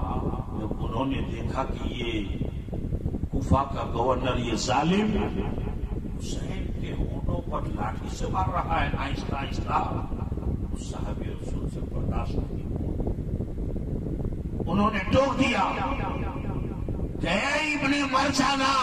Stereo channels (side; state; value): both; identical; correlation 1.00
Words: جب انہوں نے دیکھا کہ یہ کوفہ کا گورنر، یہ ظالم حسین کے ہونٹوں پر لاٹھی سے مار رہا ہے آہستہ آہستہ، اس صحابی رسول سے برداشت نہیں ہوا۔ انہوں نے ٹوک دیا کہ اے ابن مرجانہ،